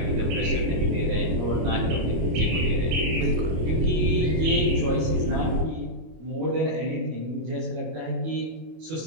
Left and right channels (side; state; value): left; late; 25 ms